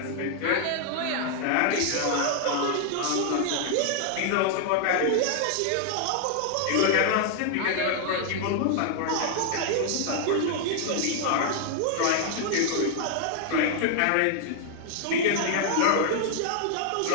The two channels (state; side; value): different; both; correlation 0.00